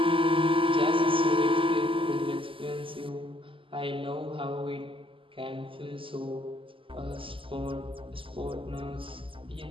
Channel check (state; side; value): late; left; 0.25 ms